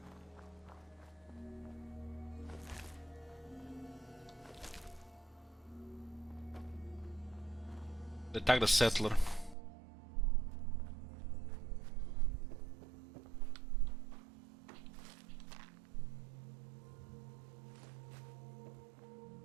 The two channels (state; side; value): drops out; left; at 9.6 s